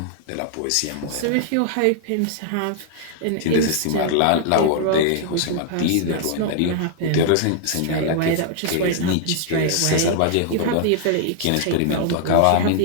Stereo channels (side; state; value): both; different; correlation -0.01